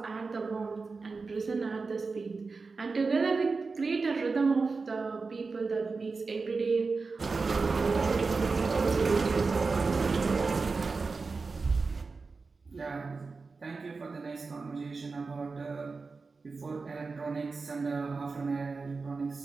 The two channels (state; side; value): quieter; left; 4.3 dB